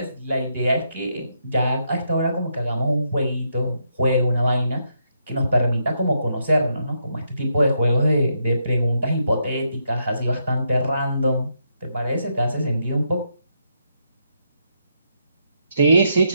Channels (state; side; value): inverted; both; correlation -0.79